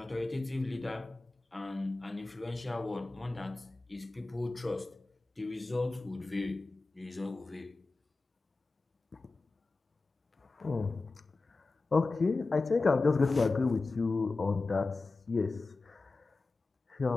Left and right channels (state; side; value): quieter; right; 3.5 dB